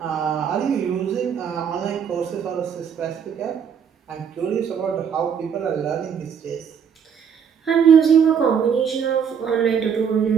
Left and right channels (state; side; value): quieter; left; 7.4 dB